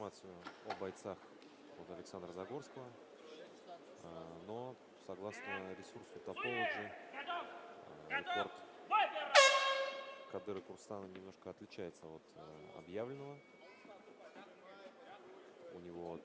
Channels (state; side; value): identical; both; correlation 1.00